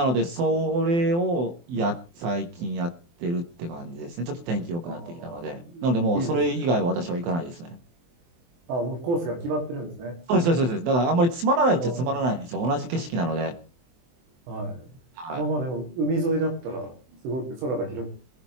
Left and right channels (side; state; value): left; late; 24 ms